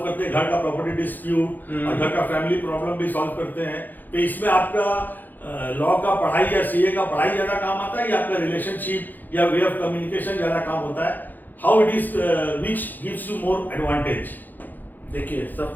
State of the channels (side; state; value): right; late; 0.086 ms